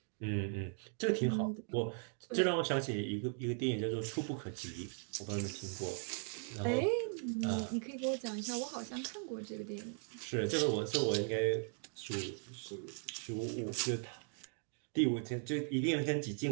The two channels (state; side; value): silent; left; 52 dB below the other